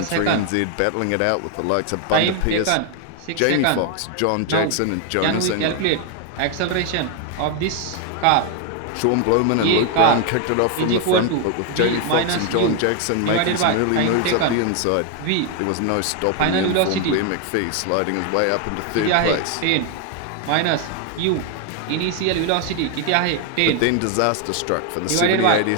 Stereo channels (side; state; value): both; different; correlation 0.01